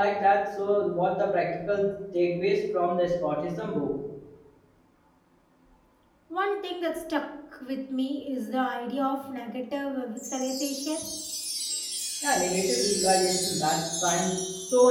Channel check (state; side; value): identical; both; correlation 1.00